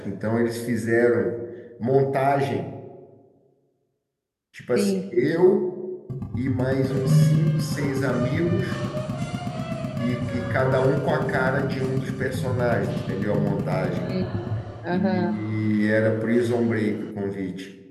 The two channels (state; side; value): identical; both; correlation 1.00